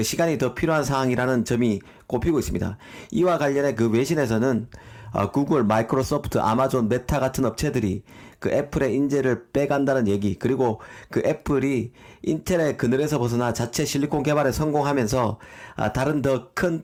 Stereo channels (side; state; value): both; identical; correlation 1.00